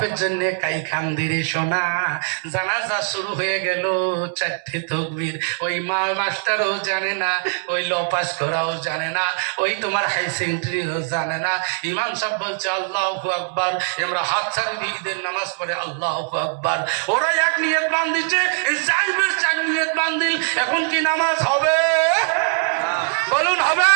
জন্য কাই খান্দিরে সোনা। জানাজা শুরু হয়ে গেল, 4টে তাকবীর। ওই মাস্টারও জানে না, ওই ল পাস করাও জানে না, ওই তোমার হাই সেকেন্ডারিও জানে না। ইমাম সাহেব বলছে আল্লাহু আকবার, আমরা হাত ছাড়ি দিয়ে ঈদের নামাজ পড়ে আল্লাহু আকবার। ওরা এক নিয়ত বান্ধিছে, 4 নিয়ত বান্ধিল। এখন কি নামাজ হবে? বলুন হবে?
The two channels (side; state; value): left; silent; digital silence